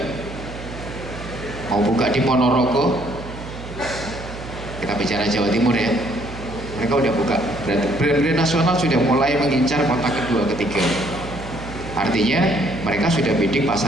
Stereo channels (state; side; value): noise; right; hum, 12 dB below the sound